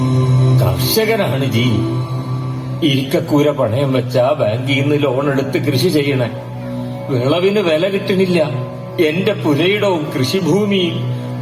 കർഷകനാണ് ജി. ഇരിക്കക്കൂര പണയം വെച്ചാ ബാങ്കിൽ നിന്ന് ലോൺ എടുത്ത് കൃഷി ചെയ്യണേ. വിളവിന് വില കിട്ടണില്ല. എന്റെ പുരയിടവും കൃഷിഭൂമിയും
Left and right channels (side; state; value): both; identical; correlation 1.00